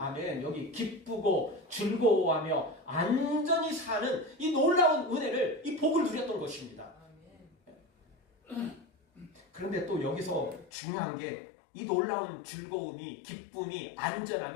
여기 기쁘고 즐거워하며 안전히 사는 이 놀라운 은혜를, 이 복을 누렸던 것입니다. 그런데 또 여기서 중요한 게 이 놀라운 즐거움이, 기쁨이,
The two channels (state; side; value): drops out; right; at 10.7 s